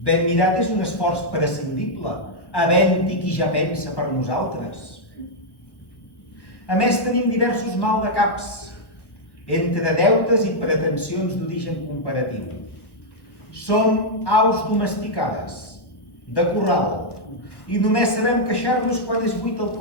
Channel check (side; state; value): right; late; 1.3 ms